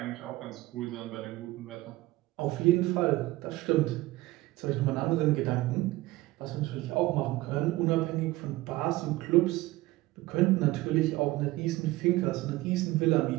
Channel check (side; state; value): left; quieter; 18.6 dB